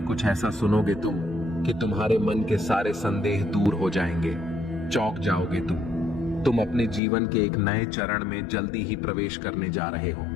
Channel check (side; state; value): right; drops out; at 7.0 s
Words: कुछ ऐसा सुनोगे तुम कि तुम्हारे मन के सारे संदेह दूर हो जाएंगे। चौंक जाओगे तुम अपने जीवन के एक नए चरण में जल्दी ही प्रवेश करने जा रहे हो।